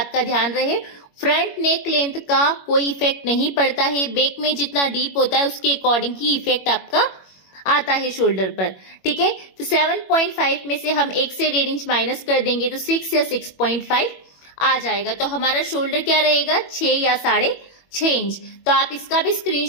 का ध्यान रहे। फ्रंट नेक लेंथ का कोई इफेक्ट नहीं पड़ता है, बैक में जितना डीप होता है उसके अकॉर्डिंग ही इफेक्ट आपका आता है शोल्डर पर। ठीक है, तो 7.5 में से हम 1 से 1.5 इंच माइनस कर देंगे तो 6 या 6.5 आ जाएगा। तो हमारा शोल्डर क्या रहेगा, 6 या 6.5 इंच। तो आप इसका भी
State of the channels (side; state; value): right; late; 21 ms